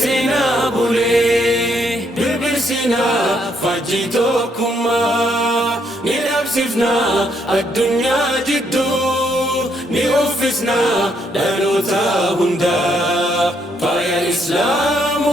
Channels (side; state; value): both; normal; correlation 0.73